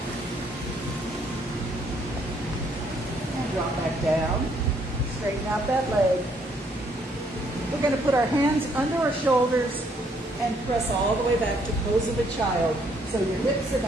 Drop back down, straighten out that leg. We're going to put our hands under our shoulders and press all the way back to pose of a child. So your hips are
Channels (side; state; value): both; normal; correlation 0.68